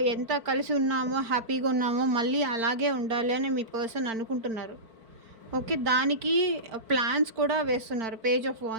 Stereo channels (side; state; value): left; late; 4.5 ms